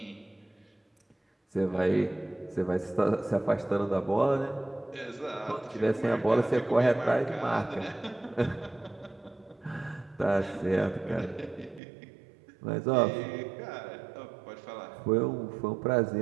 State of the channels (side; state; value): left; drops out; at 11.8 s